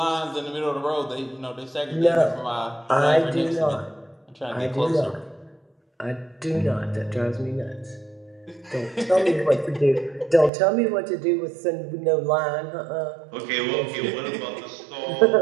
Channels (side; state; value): left; drops out; at 10.5 s